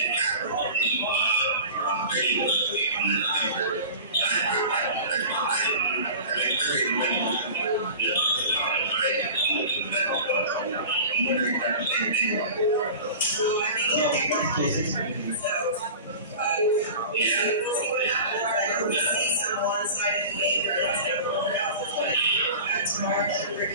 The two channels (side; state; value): both; inverted; correlation -0.36